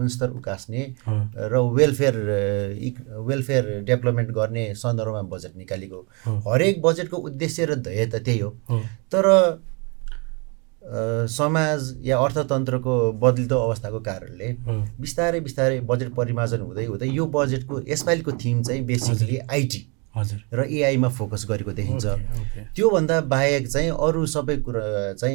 उकास्ने र वेलफेयर डेभलपमेन्ट गर्ने सन्दर्भमा बजेट निकालेको। हरेक बजेटको उद्देश्य र ध्येय त त्यही हो। तर समाज या अर्थतन्त्रको बदलिदो अवस्थाको कारणले बिस्तारै बिस्तारै बजेट परिमार्जन हुँदै हुँदै यो बजेटको यसपालिको थिम चाहिँ बेसिकली आइटी र एआईमा फोकस गरेको देखिन्छ। त्योभन्दा बाहेक चाहिँ अरू सबै कुरा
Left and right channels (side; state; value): left; quieter; 32.6 dB